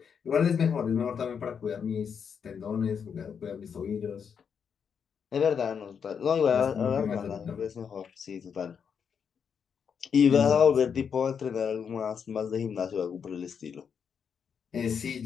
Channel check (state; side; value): quieter; right; 6.9 dB